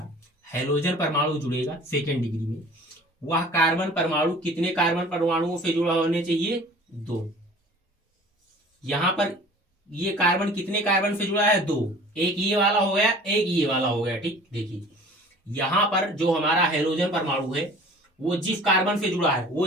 हेलोजन परमाणु जुड़ेगा सेकेंड डिग्री में, वह कार्बन परमाणु कितने कार्बन परमाणुओं से जुड़ा होने चाहिए, 2। यहां पर ये कार्बन कितने कार्बन से जुड़ा है, 2। एक ये वाला हो गया, एक ये वाला हो गया। ठीक, देखिए यहां पर जो हमारा हेलोजन परमाणु है वो जिस कार्बन से जुड़ा है, वो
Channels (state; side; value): normal; both; correlation 0.47